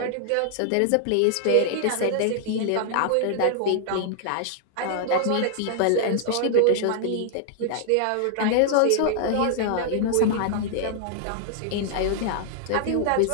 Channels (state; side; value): different; both; correlation 0.00